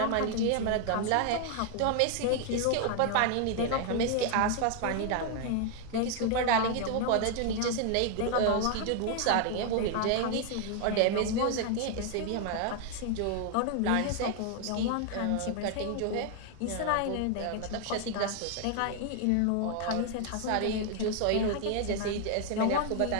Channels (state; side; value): different; both; correlation 0.00